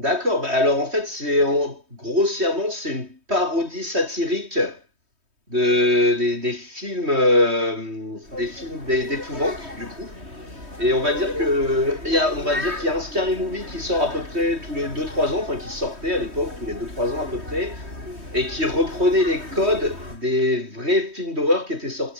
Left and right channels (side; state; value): left; late; 3.2 ms